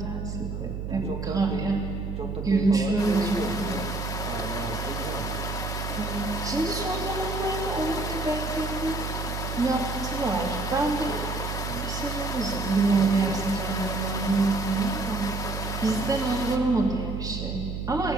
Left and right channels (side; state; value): right; noise; hum, 5 dB below the sound